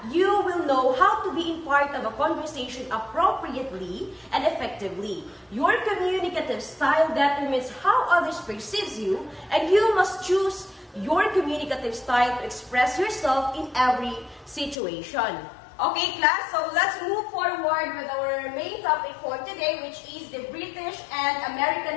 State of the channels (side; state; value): right; drops out; at 14.8 s